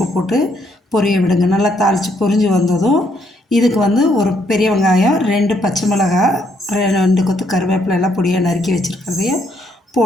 போட்டு பொரிய விடுங்க. நல்லா தாளித்து பொரிஞ்சு வந்ததும் இதுக்கு ஒரு பெரிய வெங்காயம், 2 பச்சை மிளகாய், 2 கொத்து கருவேப்பிலை எல்லாம் பொடியாக நறுக்கி வச்சுருக்கிறதையும்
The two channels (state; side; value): normal; both; correlation 0.72